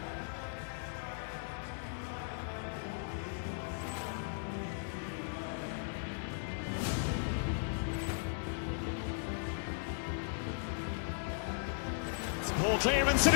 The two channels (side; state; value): right; silent; digital silence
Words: Ball clearance and